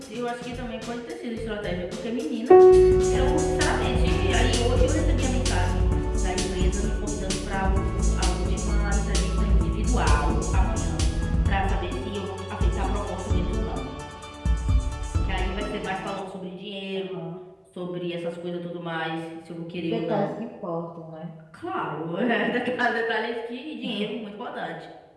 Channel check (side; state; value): both; identical; correlation 1.00